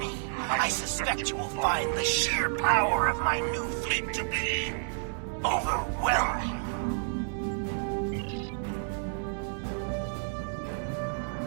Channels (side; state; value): left; silent; digital silence